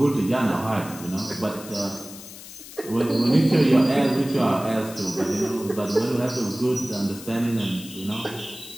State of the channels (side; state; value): left; noise; hiss, 15 dB below the sound